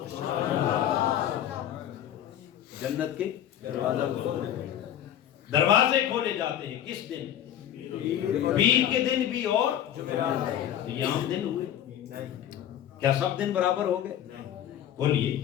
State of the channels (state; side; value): quieter; right; 10.9 dB